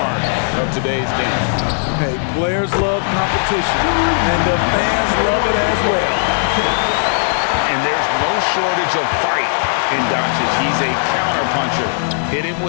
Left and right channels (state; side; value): silent; right; digital silence